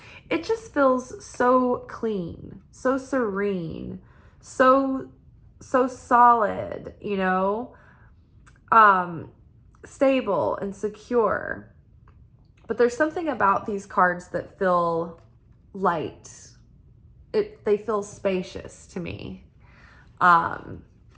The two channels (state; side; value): identical; both; correlation 1.00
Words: It just feels so clean, so serene, so solid, you know, stable and secure. But there's something about these cards that feel light. They feel spacious to me. And